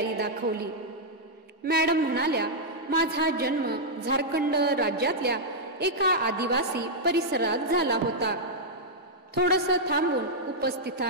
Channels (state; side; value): normal; both; correlation -0.06